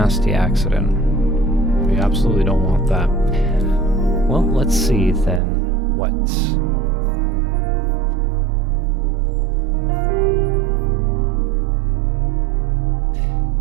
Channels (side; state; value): left; drops out; at 5.4 s